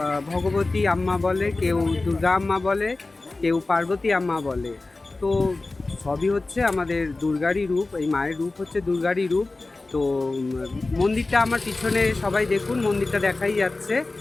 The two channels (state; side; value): quieter; right; 3.3 dB